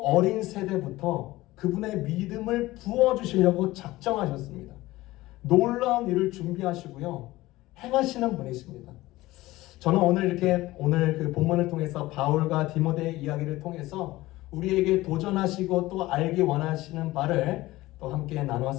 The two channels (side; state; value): right; quieter; 18.1 dB